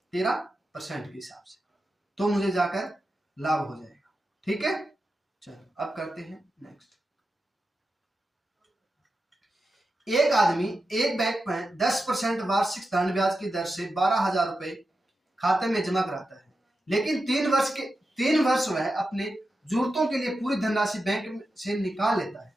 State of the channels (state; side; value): normal; both; correlation 0.90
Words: 13% के हिसाब से, तो मुझे जाकर लाभ हो जाएगा, ठीक है। चलो अब करते हैं नेक्स्ट। एक आदमी एक बैंक में 10% वार्षिक साधारण ब्याज की दर से 12,000 रुपए खाते में जमा कराता है, लेकिन 3 वर्ष वह अपने जरूरतों के लिए पूरी धनराशि बैंक से निकाल लेता है।